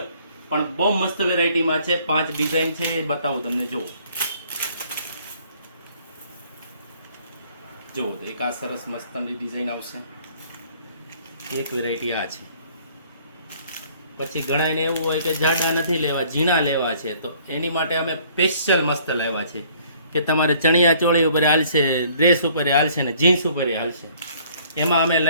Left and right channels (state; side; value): inverted; both; correlation -0.58